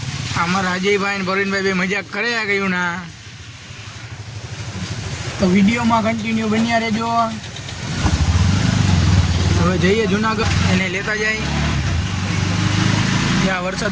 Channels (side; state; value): both; identical; correlation 1.00